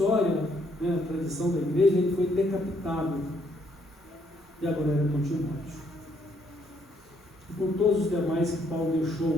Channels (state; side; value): normal; both; correlation 0.70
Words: a tradição da igreja, ele foi decapitado. E agora era com Timóteo. E com todos os demais que Paulo